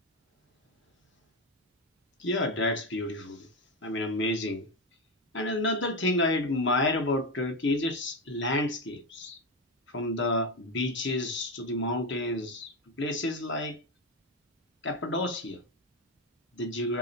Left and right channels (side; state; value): both; normal; correlation 0.13